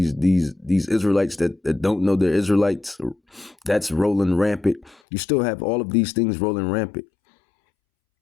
that don't know they're Israelites. That's rolling rampant. You still have all of these things rolling rampant.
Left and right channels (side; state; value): right; drops out; at 5.0 s